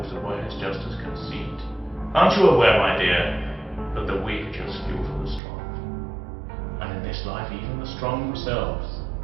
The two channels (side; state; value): left; drops out; at 5.4 s